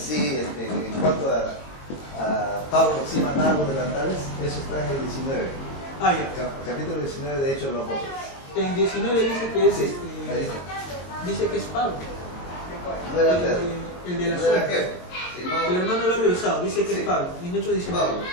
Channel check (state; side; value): late; right; 22 ms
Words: en cuanto a Pablo, sí mandaba los delantales, eso está en el 19. Ah, ya. Capítulo 19 de Hechos de los Apóstoles. En 19 dice que es Sí, ahí está. dice que es Pablo, No era Pedro. el de la No era suerte. Pedro, sino El hermano lo ha revisado, dice que Sí. es Pablo, en Hechos 19. Pablo.